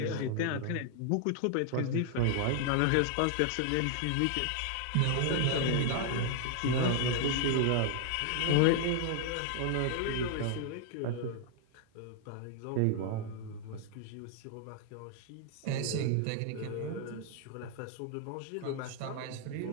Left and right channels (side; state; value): both; different; correlation 0.00